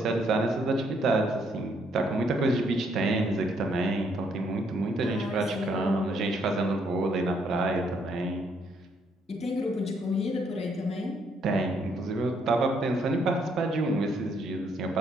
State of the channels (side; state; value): both; normal; correlation 0.71